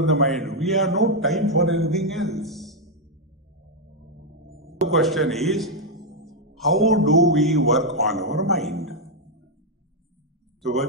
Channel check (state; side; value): normal; both; correlation 0.00